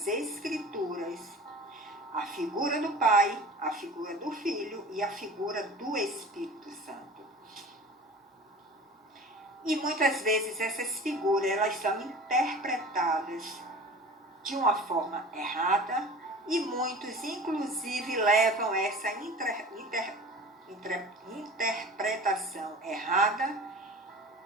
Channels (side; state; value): both; normal; correlation 0.40